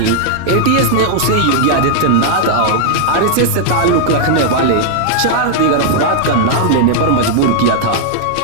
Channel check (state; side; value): different; both; correlation -0.01